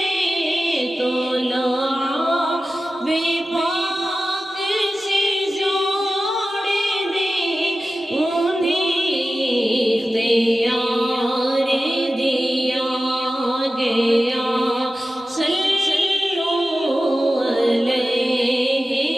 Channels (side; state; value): both; normal; correlation 0.94